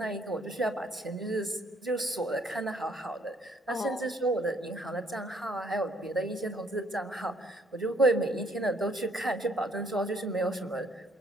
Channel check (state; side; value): normal; both; correlation 0.64